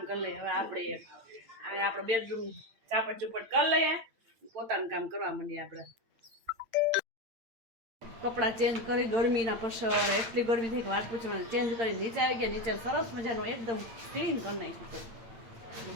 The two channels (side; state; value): left; late; 8.8 ms